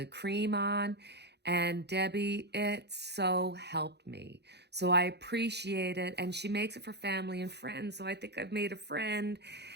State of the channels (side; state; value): left; late; 0.49 ms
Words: cream on. And Debbie, it so helped me. So I appreciate it. And she makes it for family and friends. So I think I've made a friend.